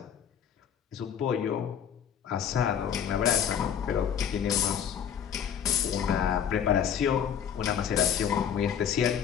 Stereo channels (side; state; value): right; quieter; 8.5 dB